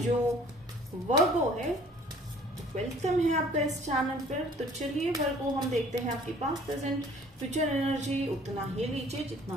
जो वर्गो है, वेलकम है आपका इस चैनल पर। तो चलिए वर्गो, हम देखते हैं आपकी पास्ट, प्रेजेंट, फ्यूचर एनर्जी। उतना ही लीजिए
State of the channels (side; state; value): both; normal; correlation 0.54